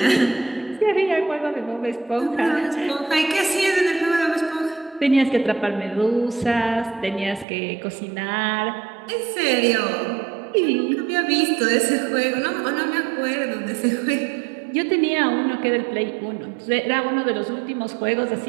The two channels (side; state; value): left; drops out; at 7.5 s